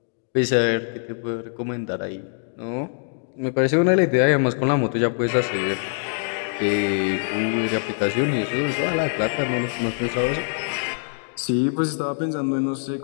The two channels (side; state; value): right; silent; digital silence